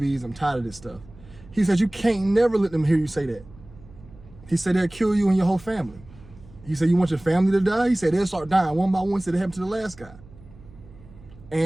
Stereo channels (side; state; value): right; noise; hum, 22 dB below the sound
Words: I'm tired of this stuff. He said, you can't never let them hear you say that. He said, they'll kill you and your whole family. He said, you want your family to die? He said, they'll start dying one by one. He said, it happened to the last guy.